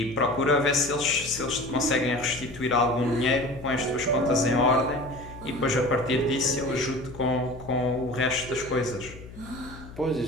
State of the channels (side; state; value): left; noise; hum, 16 dB below the sound